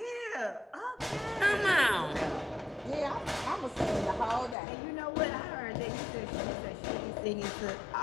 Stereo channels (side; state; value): right; drops out; at 4.5 s